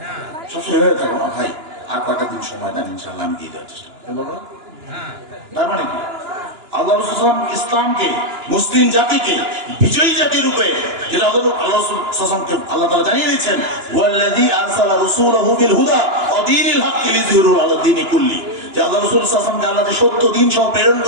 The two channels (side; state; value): left; late; 2.9 ms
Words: সবসময় এভাবে থাকবো না ভাই, আর কয়েকটা দিন সময় দেন, ইনশাআল্লাহ আমি দিয়ে দেওয়ার চেষ্টা করবো। তার মানে কি? আল্লাহ রাসূল ইসলামকে, মুসলিম জাতিকে বিজয়ী জাতি রূপে, যেটা আল্লাহ রাসূলকে আল্লাহ তাআলা জানিয়ে দিয়েছেন, ওয়াল্লাযী আরসালা রাসূলাহু বিল হুদা ওয়া দীনিল হক লিইয়ুযহিরাহু আলা দীনি কুল্লি, যে আল্লাহ রাসূল সাল্লাল্লাহু আলাইহি ওয়াসাল্লামকে আল্লাহ সত্য দ্বীন সহ প্রেরণ